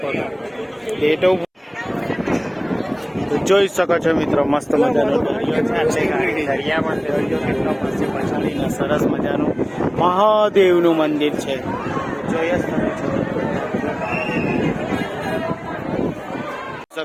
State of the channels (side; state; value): both; identical; correlation 1.00